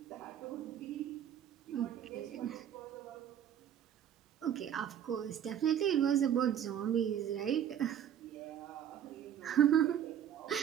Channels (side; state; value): left; quieter; 9.6 dB